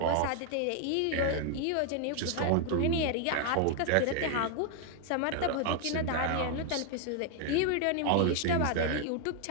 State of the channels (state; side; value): different; both; correlation 0.00